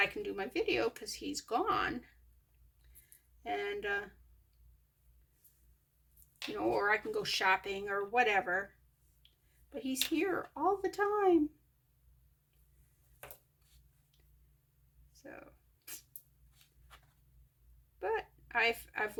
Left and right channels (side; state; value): both; identical; correlation 1.00